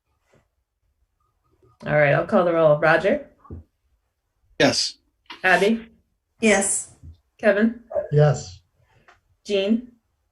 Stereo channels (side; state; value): both; identical; correlation 1.00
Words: All right, I'll call the roll. Roger? Yes. Abby? Yes. Kevin? Yes. Jean?